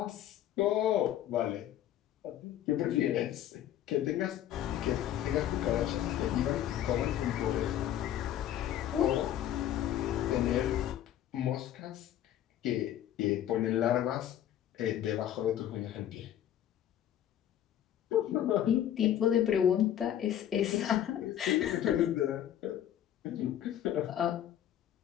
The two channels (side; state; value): right; quieter; 11.3 dB